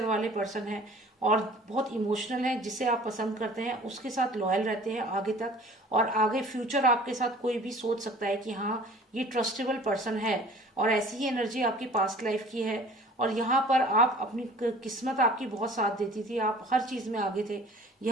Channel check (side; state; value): both; normal; correlation 0.47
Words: वाले पर्सन हैं और बहुत इमोशनल हैं। जिसे आप पसंद करते हैं उसके साथ लॉयल रहते हैं आगे तक और आगे फ्यूचर आपके साथ कोई भी सोच सकता है कि हाँ ये ट्रस्टेबल पर्सन है। और ऐसी ही एनर्जी आपकी पास्ट लाइफ की है और यहाँ पर आप अपनी किस्मत आपकी बहुत साथ देती थी, आप हर चीज़ में आगे थे।